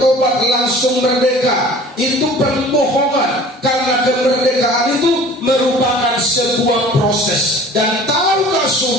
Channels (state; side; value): normal; both; correlation 0.46